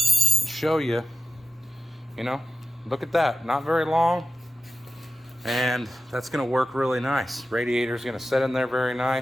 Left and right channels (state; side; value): normal; both; correlation 0.93